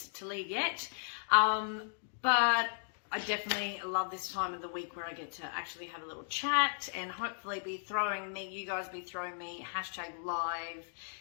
to leave yet, but I definitely love this time of the week where I get to actually have a little chat and hopefully you guys be throwing me hashtag live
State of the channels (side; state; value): right; silent; digital silence